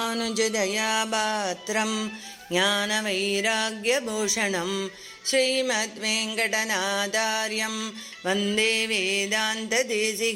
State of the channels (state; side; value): identical; both; correlation 1.00